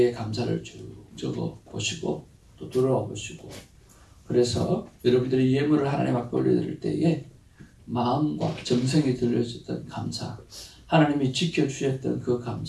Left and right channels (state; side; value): identical; both; correlation 1.00